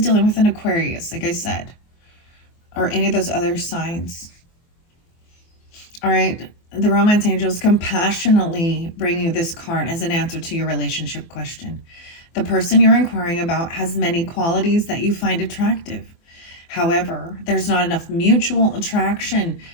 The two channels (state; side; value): late; right; 24 ms